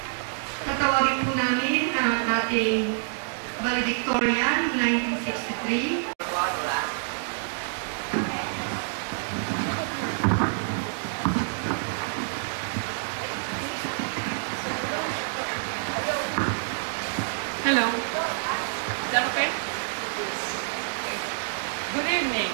tatawagin po namin ang ating valedictorian 1963. Hello. Is that okay? Good evening.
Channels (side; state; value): left; silent; digital silence